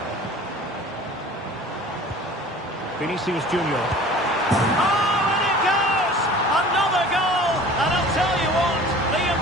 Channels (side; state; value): both; normal; correlation 0.44